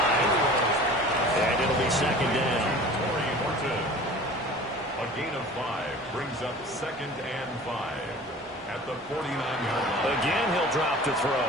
and it'll be 2nd down. A gain of 5 brings up 2nd and 5 at the 49-yard line. Again, he'll drop to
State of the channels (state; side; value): normal; both; correlation 0.42